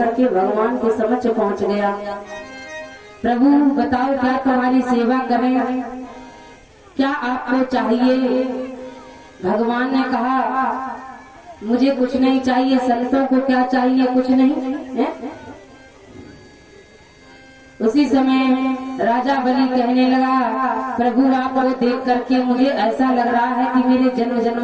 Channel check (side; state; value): both; identical; correlation 1.00